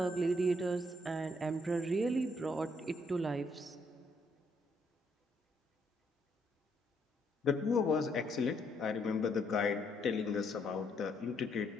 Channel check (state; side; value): normal; both; correlation 0.72